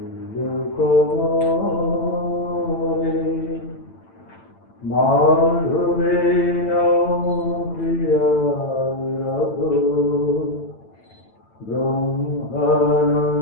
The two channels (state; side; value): late; right; 9.0 ms